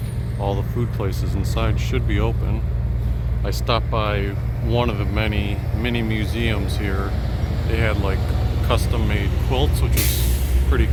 all the food places inside should be open. I stopped by one of the many mini museums here. They had like custom made quilts, which was pretty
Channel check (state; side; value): identical; both; correlation 1.00